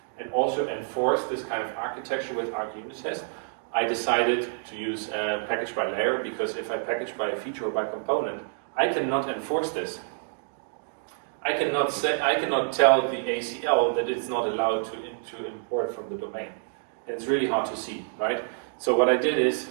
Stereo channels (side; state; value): left; silent; digital silence